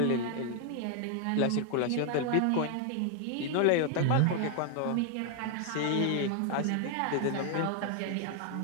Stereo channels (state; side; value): different; both; correlation 0.00